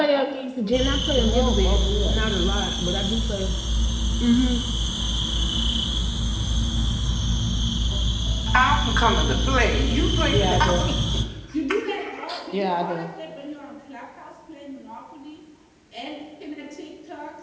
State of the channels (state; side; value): identical; both; correlation 1.00